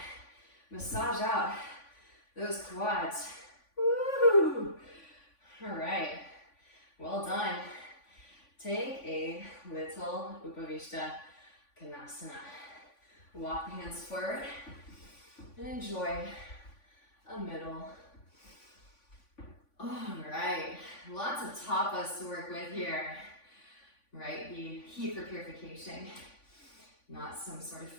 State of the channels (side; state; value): right; late; 3.5 ms